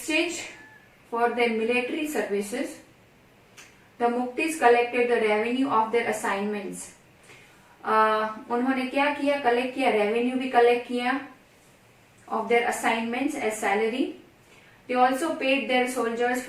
for their military services the muqtis collected the revenue of their assignments. उन्होंने क्या किया? कलेक्ट किया, रेवेन्यू भी कलेक्ट किया of their assignments as salary. They also paid their soldiers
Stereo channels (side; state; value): both; identical; correlation 1.00